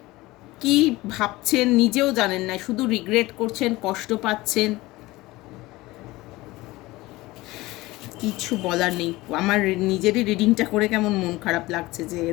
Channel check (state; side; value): quieter; right; 19.7 dB